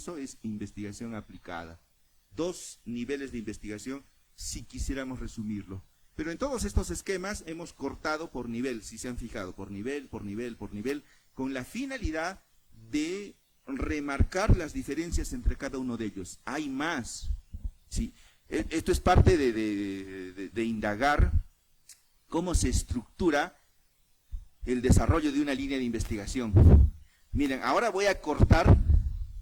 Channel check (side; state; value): both; identical; correlation 1.00